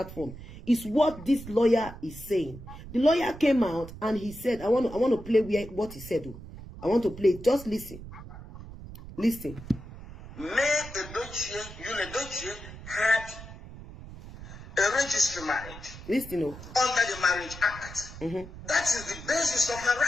is what this lawyer is saying. The lawyer came out and he said, I want to play what he said. I want to play. Just listen. Listen. Mayyuledochie, Yul Edochie had a registered marriage. Listen. Under the Marriage Act. That is the basis of her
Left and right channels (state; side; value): noise; right; rumble, 14 dB below the sound